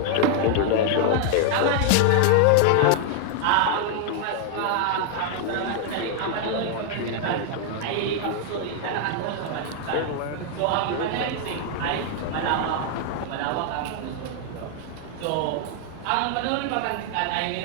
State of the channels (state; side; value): different; both; correlation 0.00